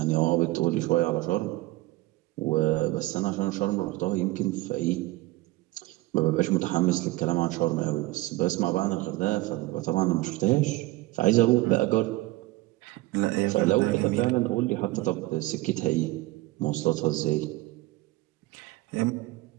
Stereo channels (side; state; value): left; quieter; 19.2 dB